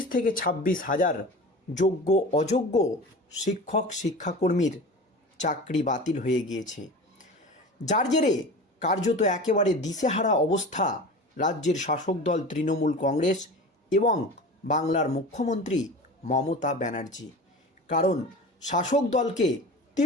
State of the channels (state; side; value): normal; both; correlation 0.34